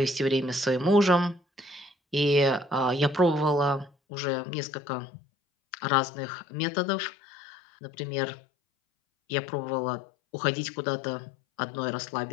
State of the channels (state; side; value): drops out; right; at 3.9 s